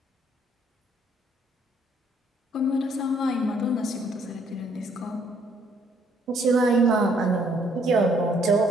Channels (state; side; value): normal; both; correlation 0.66